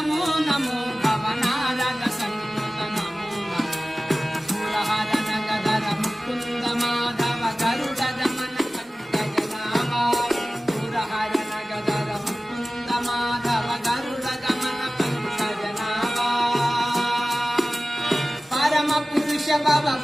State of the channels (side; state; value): both; normal; correlation 0.97